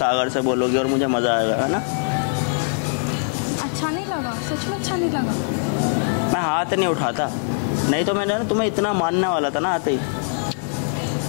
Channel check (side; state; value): right; silent; digital silence